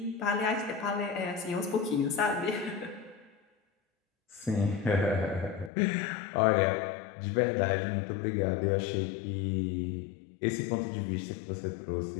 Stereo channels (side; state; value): right; drops out; at 5.7 s